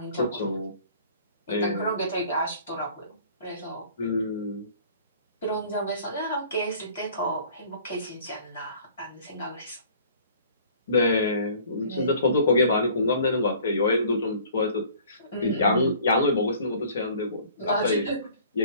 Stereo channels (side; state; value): both; inverted; correlation -0.51